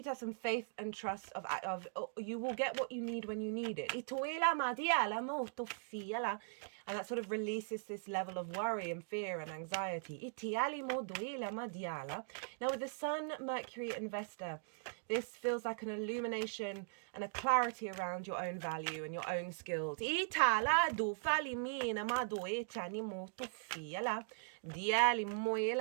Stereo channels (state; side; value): silent; left; digital silence